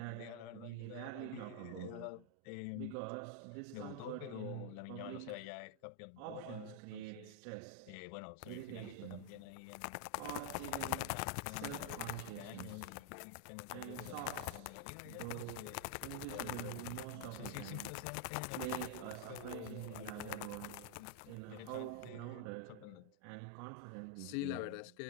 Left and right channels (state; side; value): different; both; correlation 0.00